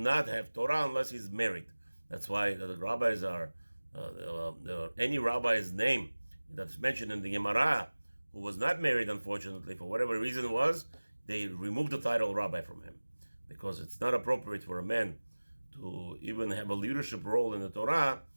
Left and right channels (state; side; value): inverted; both; correlation -1.00